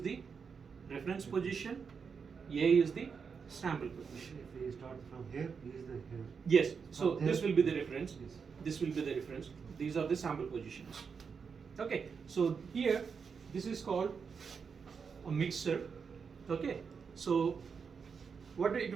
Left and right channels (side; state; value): left; quieter; 5.9 dB